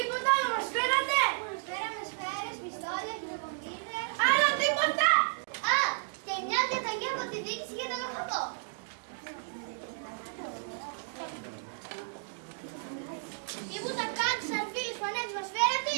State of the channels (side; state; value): left; silent; digital silence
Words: άλλο μας φέρατε! Μας φέραμε σφαίρες, πιστόλια, χειροκομίδες. Άλλο τίποτα! Α, και μια διαταγή από τη διοίκηση για τον οχατό. Τίποτα κάτω, σαρφίλες, φανέτες μας